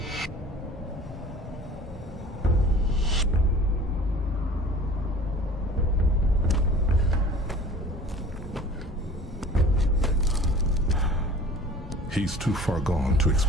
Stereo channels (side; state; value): both; normal; correlation 0.45